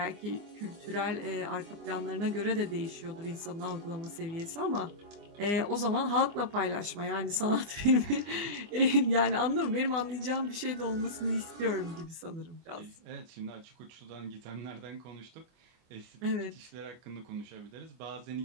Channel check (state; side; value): late; left; 24 ms